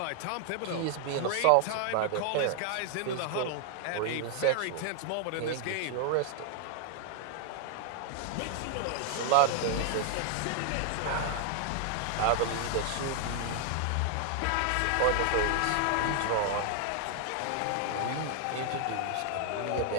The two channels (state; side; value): different; both; correlation 0.00